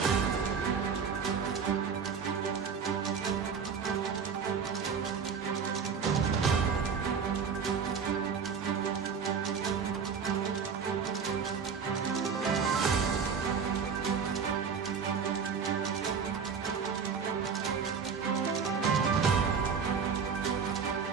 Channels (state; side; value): quieter; left; 6.3 dB